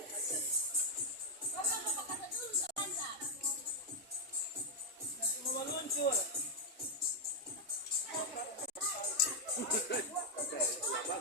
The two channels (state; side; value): normal; both; correlation -0.01